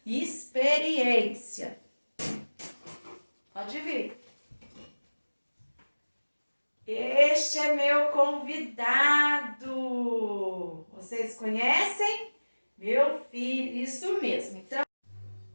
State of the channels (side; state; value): both; inverted; correlation -1.00